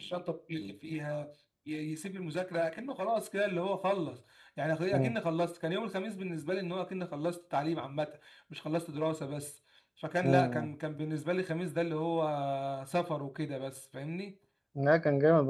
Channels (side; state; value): both; identical; correlation 1.00